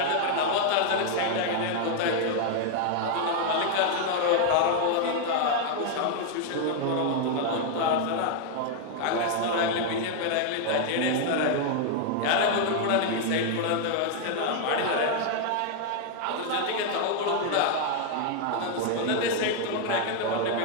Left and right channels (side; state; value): both; different; correlation 0.00